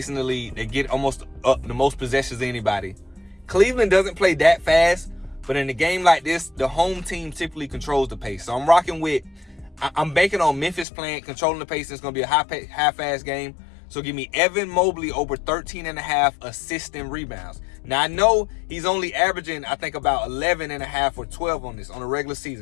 in the league. They get almost the most possessions of anybody. Cleveland doesn't play that fast, but in a game like this, the home team typically controls the pace. So I'm banking on Memphis controlling the pace. It's going to be a high-fast game. So give me Evan Mobley over 13.5 assists and rebounds. Now, I know he's only averaging, I think, about 11.5 or 12 on a regular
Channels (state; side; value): drops out; right; at 10.9 s